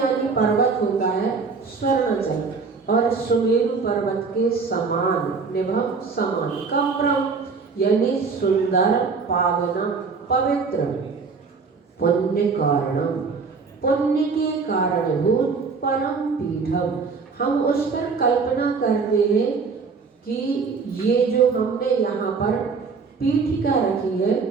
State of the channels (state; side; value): quieter; left; 4.9 dB